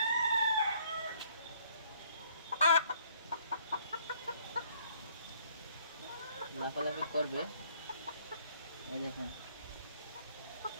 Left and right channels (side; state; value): both; inverted; correlation -0.62